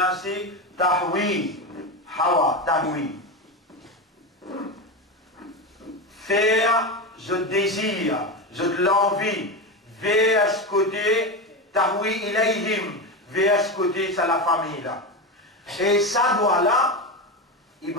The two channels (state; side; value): normal; both; correlation 0.17